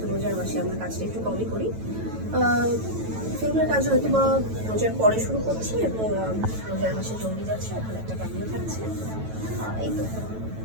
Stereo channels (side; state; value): left; late; 9.1 ms